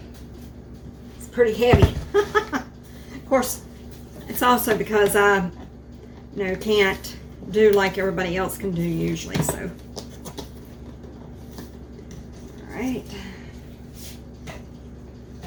It's pretty heavy. Of course, it's also because I, can't do like everybody else can do usually, so. All right.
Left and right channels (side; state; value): both; identical; correlation 1.00